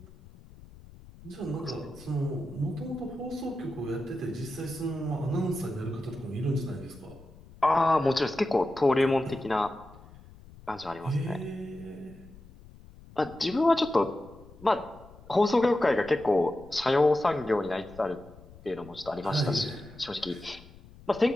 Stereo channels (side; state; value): left; noise; rumble, 21 dB below the sound